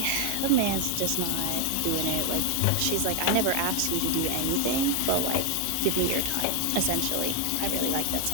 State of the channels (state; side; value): different; both; correlation 0.00